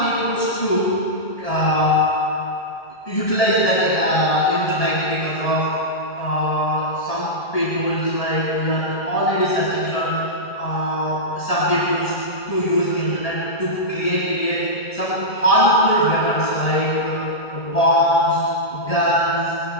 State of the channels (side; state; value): right; late; 1.7 ms